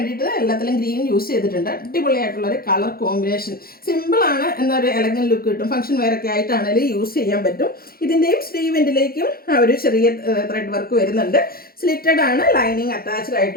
എല്ലാത്തിലും ഗ്രീൻ യൂസ് ചെയ്തിട്ടുണ്ട്. അടിപൊളിയായിട്ടുള്ളൊരു കളർ കോമ്പിനേഷൻ. സിമ്പിളാണ് എന്നൊരു എലഗൻ ലുക്ക് കിട്ടും. ഫംഗ്ഷൻ വെയറൊക്കെ ആയിട്ടാണെങ്കിലും യൂസ് ചെയ്യാൻ പറ്റും. ഇതിൻ്റെയും സ്ലീവെൻറ്റിലേക്കും ആ ഒരു ചെറിയ ത്രെഡ് വർക്ക് വരുന്നുണ്ട്. സ്ലിറ്റഡ് ആണ്, ലൈനിങ് അറ്റാച്ച്ഡ്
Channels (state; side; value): late; right; 0.44 ms